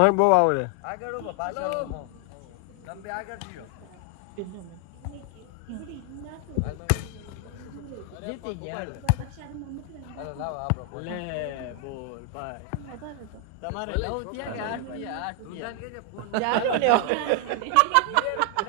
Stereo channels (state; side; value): different; both; correlation 0.00